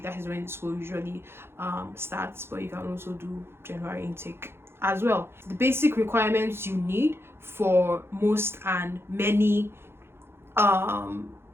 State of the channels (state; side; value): late; left; 0.12 ms